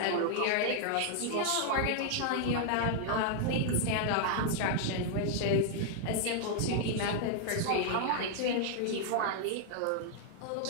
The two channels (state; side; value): different; both; correlation 0.00